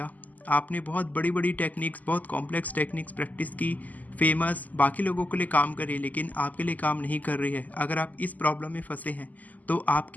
आपने बहुत बड़ी बड़ी टेक्निक्स, बहुत कॉम्प्लेक्स टेक्निक्स प्रैक्टिस की, फेमस बाकी लोगों के लिए काम कर रही है लेकिन आपके लिए काम नहीं कर रही है। अगर आप इस प्रॉब्लम में फंसे हैं तो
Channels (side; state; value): right; late; 0.079 ms